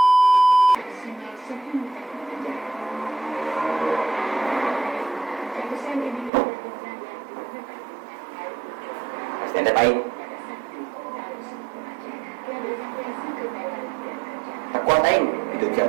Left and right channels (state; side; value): drops out; left; at 6.3 s